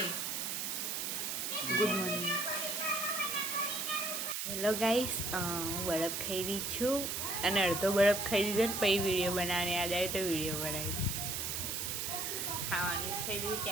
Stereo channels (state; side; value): noise; right; hiss, 2 dB below the sound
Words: Good morning. હેલો ગાઈસ, હું બરફ ખાઈ રહી છું અને અડધો બરફ ખાઈ લીધો ને પછી વિડીયો બનાવવાની યાદ આવી તો વિડીયો બનાવી. ખાવાનું ખાઈ લીધું